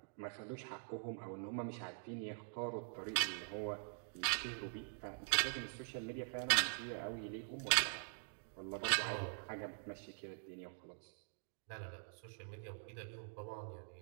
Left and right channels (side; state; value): left; silent; digital silence